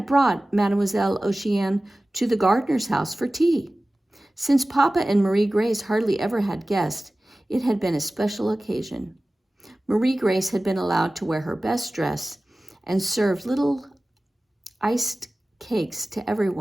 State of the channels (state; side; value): normal; both; correlation 0.97